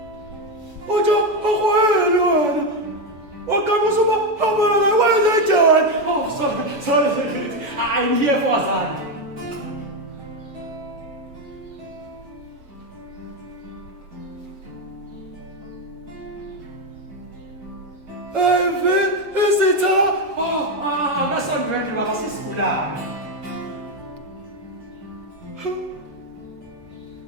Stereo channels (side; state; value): left; late; 7.0 ms